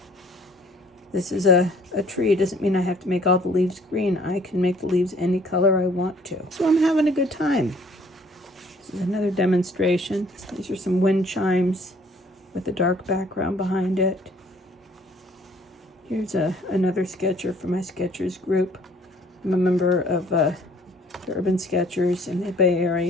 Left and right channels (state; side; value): normal; both; correlation 0.57